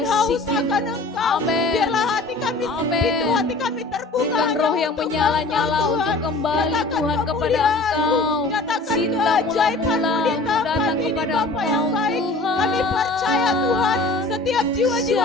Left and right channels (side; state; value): right; quieter; 3.3 dB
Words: haus akan Engkau. Biarlah hati kami pintu hati kami terbuka. Roh yang menyala-nyala untuk kembali Tuhan kepada Engkau. Nyatakan keajaiban-Mu di dalam kami ini Bapa yang baik. Kami percaya Tuhan, setiap jiwa-jiwa